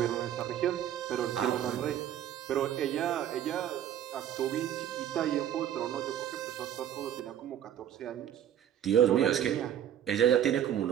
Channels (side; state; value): left; quieter; 10.4 dB